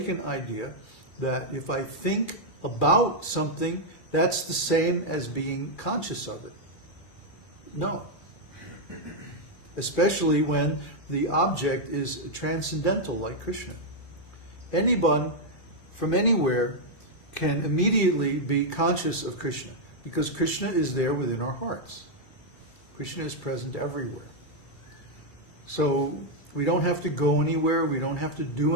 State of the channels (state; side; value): late; right; 2.3 ms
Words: idea that if I think about something, that's the same as being conscious of it. No. Especially when the object is transcendental, like Kṛṣṇa. Anyone from anywhere can immediately be conscious of Kṛṣṇa, because Kṛṣṇa is there within our hearts. Kṛṣṇa is present everywhere. So we don't have to go anywhere, we don't have to do